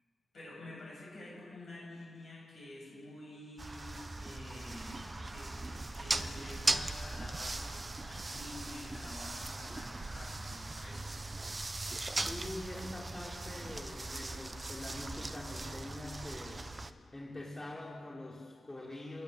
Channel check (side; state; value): both; normal; correlation 0.96